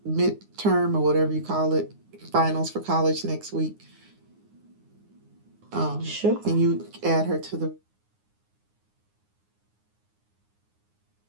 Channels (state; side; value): late; left; 9.7 ms